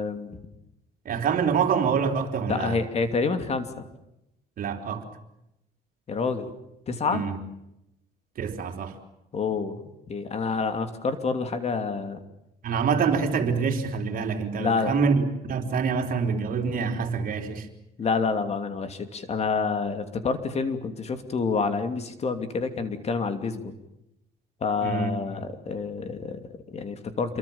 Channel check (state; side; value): normal; both; correlation 0.38